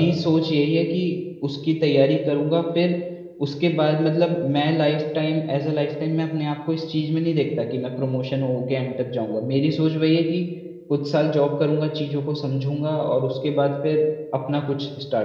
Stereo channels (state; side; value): identical; both; correlation 1.00